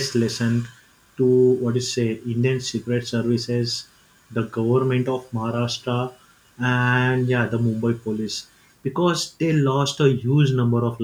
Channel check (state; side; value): identical; both; correlation 1.00